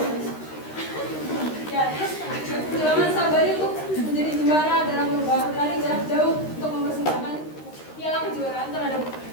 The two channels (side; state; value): right; late; 13 ms